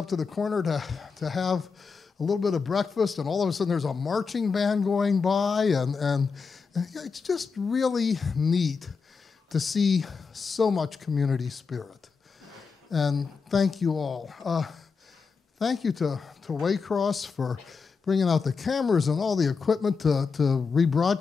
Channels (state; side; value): quieter; right; 5.1 dB